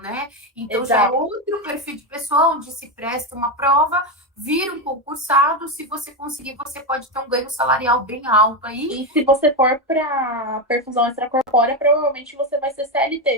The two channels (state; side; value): normal; both; correlation 0.11